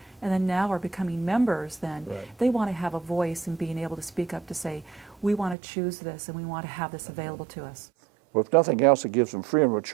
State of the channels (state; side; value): drops out; left; at 5.6 s